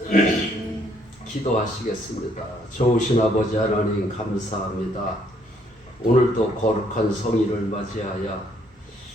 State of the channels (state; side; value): normal; both; correlation 0.67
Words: 기도하시겠습니다. 좋으신 아버지 하나님 감사합니다. 오늘도 거룩한 성일을 맞이하여